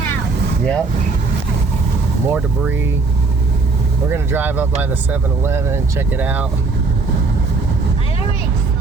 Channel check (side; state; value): left; quieter; 4.0 dB